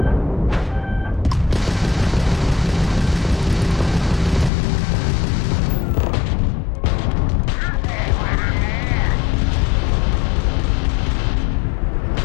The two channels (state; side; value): drops out; right; at 4.5 s